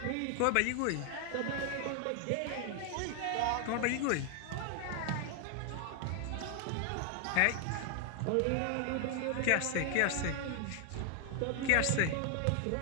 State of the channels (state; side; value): different; both; correlation 0.00